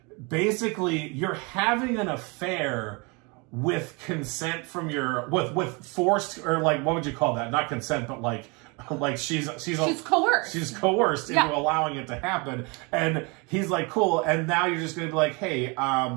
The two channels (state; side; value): quieter; left; 29.6 dB